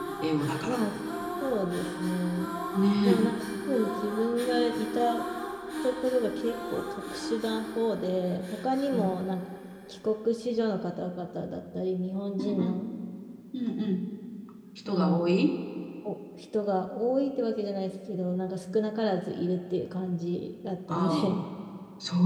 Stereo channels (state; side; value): identical; both; correlation 1.00